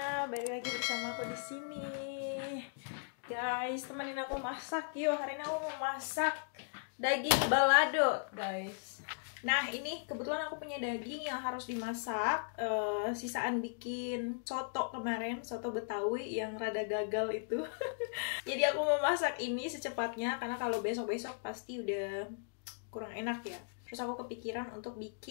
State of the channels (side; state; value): right; silent; digital silence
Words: Balik lagi bersama aku di sini. Guys, temenin aku masak yuk. Hari ini aku mau masak daging balado, guys. Nah, ini kebetulan aku punya daging yang harus dimasak. Sisaan bikin soto kemarin, soto Betawi yang rada gagal itu. Jadi aku mau masak ini secepatnya karena kalau besok-besok pasti udah kurang enak ya. Terus aku kepikiran untuk